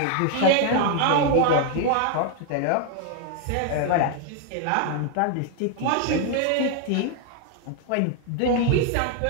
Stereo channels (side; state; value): both; different; correlation 0.01